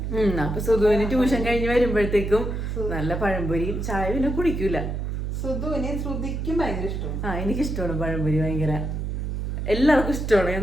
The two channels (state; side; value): noise; right; hum, 3 dB below the sound